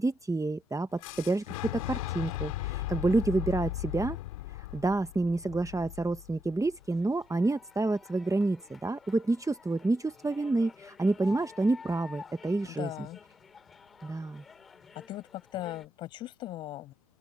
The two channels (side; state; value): both; normal; correlation 0.85